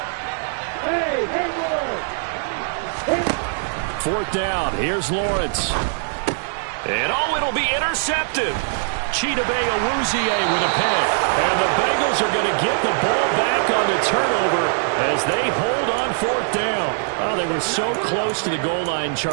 Fourth down. Here's Lawrence. And it'll be intercepted. Chidobe Awuzie with a pick. And the Bengals are going to get the ball back on the turnover as they hold on 4th down. Oh, they were so close to the goal line,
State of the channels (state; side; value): silent; left; digital silence